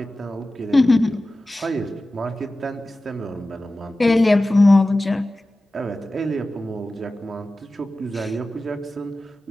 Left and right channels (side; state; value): both; normal; correlation 0.95